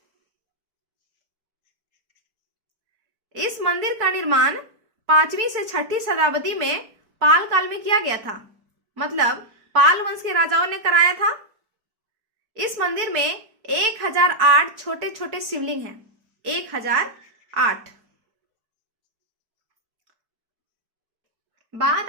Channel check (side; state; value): left; late; 4.6 ms